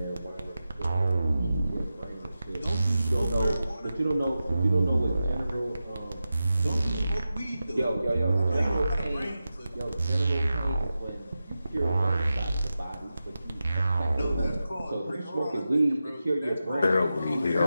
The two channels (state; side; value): inverted; both; correlation -0.92